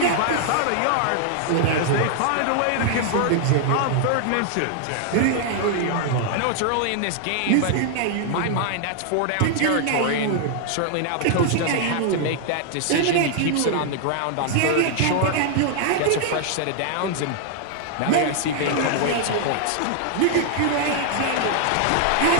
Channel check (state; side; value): different; both; correlation 0.00